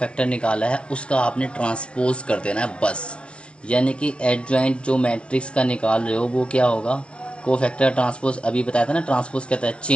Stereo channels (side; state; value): right; late; 0.059 ms